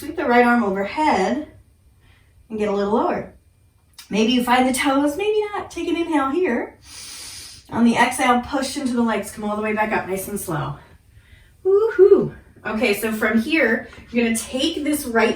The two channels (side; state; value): both; identical; correlation 1.00